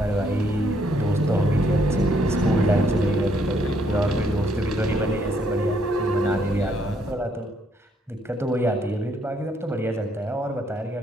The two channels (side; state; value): both; normal; correlation 0.70